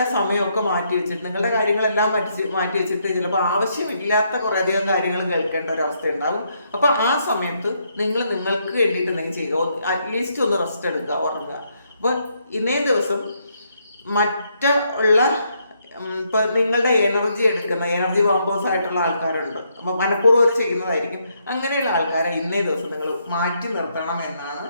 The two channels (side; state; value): both; inverted; correlation -0.75